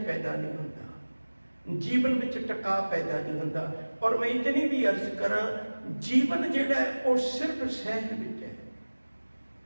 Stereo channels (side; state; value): both; inverted; correlation -1.00